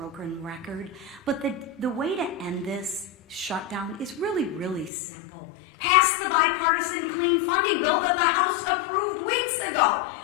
record, but the way to end this shutdown is really, really simple. Pass the bipartisan clean funding bill that the House approved weeks ago.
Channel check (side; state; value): right; drops out; at 4.9 s